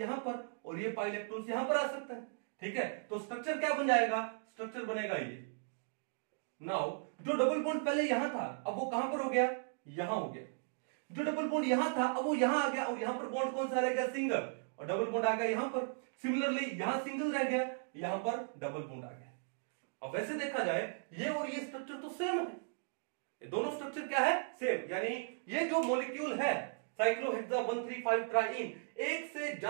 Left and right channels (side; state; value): left; silent; digital silence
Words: पर, और ये पाई इलेक्ट्रॉन्स यहां पर आ सकते हैं। ठीक है, तो स्ट्रक्चर क्या बन जाएगा, स्ट्रक्चर बनेगा ये। नाउ जो डबल बॉन्ड पहले यहां था अब वो कहां पर हो गया, यहां हो गया। जो डबल बॉन्ड यहां था अब वो यहां आ गया, और यहां पर बॉन्ड कौन सा रह गया, सिंगल, और डबल बॉन्ड आ गया यहां पर। सिमिलरली यहां सिंगल रह गया, यहां पर डबल बॉन्ड आ गया। अब वैसे देखा जाए ये और ये स्ट्रक्चर तो सेम है, ये दोनों स्ट्रक्चर क्या है, सेम, यानी ये जो मॉलिक्यूल है साइक्लोहेक्सा 1 3 5 ट्राइइन एक से